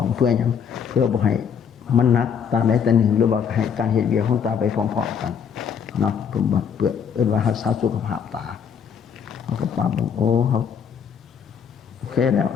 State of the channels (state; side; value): quieter; right; 7.3 dB